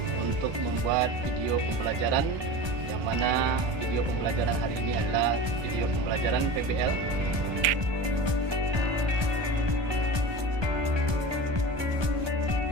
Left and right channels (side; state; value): left; late; 1.2 ms